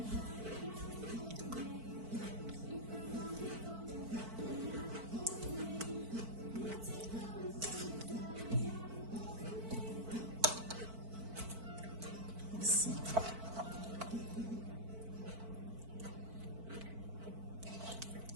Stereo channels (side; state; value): left; late; 4.5 ms